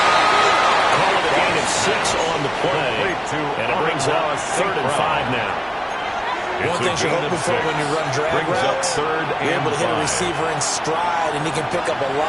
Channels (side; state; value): both; identical; correlation 1.00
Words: Call it a gain of 6 on the play. And it brings up 3rd and 5 now. One thing you're hoping for when you run drag routes, you're able to hit a receiver in stride, and he can pick up a